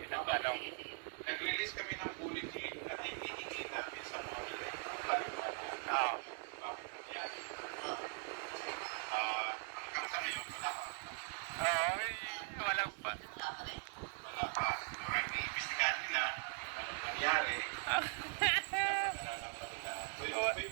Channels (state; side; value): silent; left; 50 dB below the other